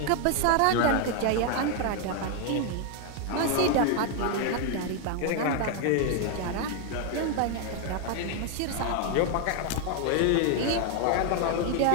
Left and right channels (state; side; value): different; both; correlation 0.01